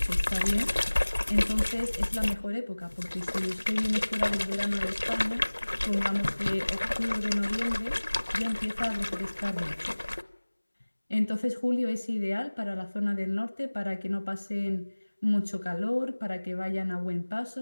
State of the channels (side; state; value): both; inverted; correlation -1.00